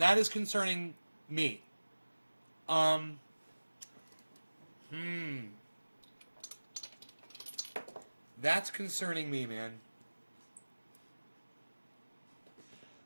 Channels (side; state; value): both; inverted; correlation -1.00